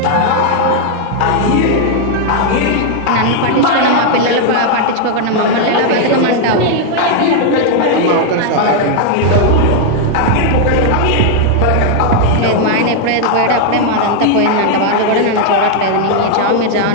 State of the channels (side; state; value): both; different; correlation 0.00